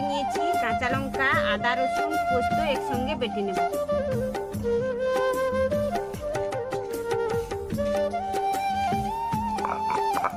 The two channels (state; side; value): identical; both; correlation 1.00